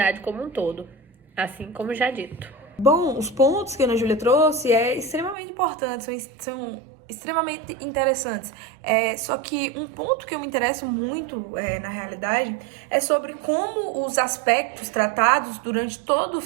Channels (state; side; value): drops out; left; at 5.4 s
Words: como um todo, assim como já dito. Bom, os pontos que a Ana Júlia trouxe extremamente importantes, são extremamente interessantes. Só que um ponto que eu me interesso muito, na realidade, é sobre como os aspectos tratados durante todo o